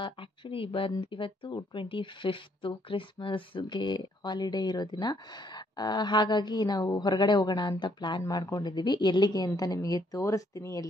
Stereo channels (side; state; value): both; normal; correlation 0.70